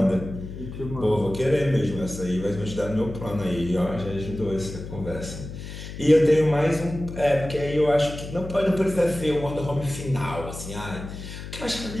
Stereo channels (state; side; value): noise; left; hum, 10 dB below the sound